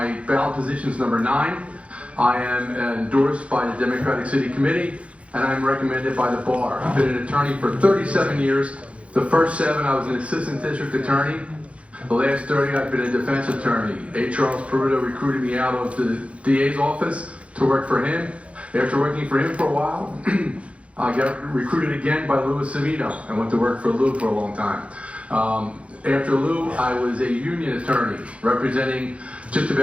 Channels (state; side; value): late; left; 0.062 ms